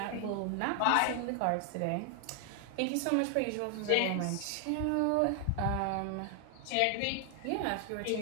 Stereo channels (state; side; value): different; both; correlation 0.00